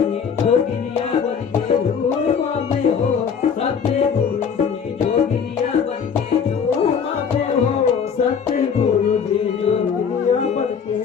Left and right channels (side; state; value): right; quieter; 6.7 dB